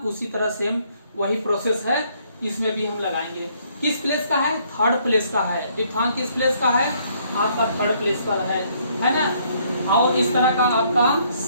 उसी तरह सेम वही प्रोसेस है, इसमें भी हम लगाएंगे। किस प्लेस का है, थर्ड प्लेस का है। डिफथॉन्ग किस प्लेस का है, आपका थर्ड प्लेस पर है ना। और इस तरह का आपका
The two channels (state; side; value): inverted; both; correlation -0.67